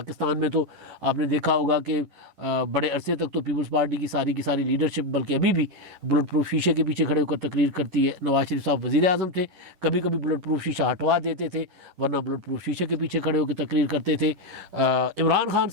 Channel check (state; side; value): late; left; 11 ms